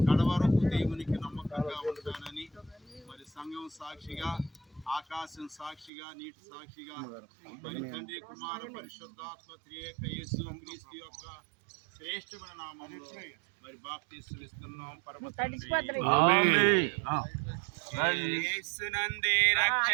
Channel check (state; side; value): drops out; left; at 5.9 s